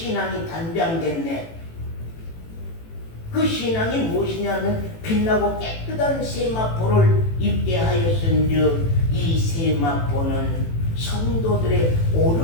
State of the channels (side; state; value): right; late; 18 ms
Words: 단장됐네. 그 신앙이 무엇이냐면 빛나고 깨끗한 세마포를 입게 하였은즉 이 세마포는 성도들의